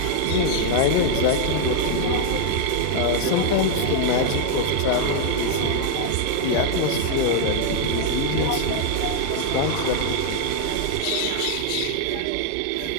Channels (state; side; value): different; both; correlation 0.00